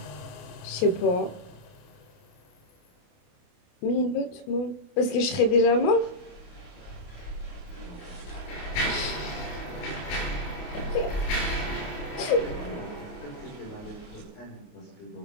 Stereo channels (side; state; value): right; late; 28 ms